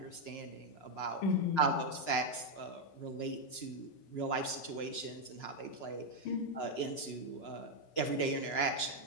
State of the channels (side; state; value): right; late; 6.0 ms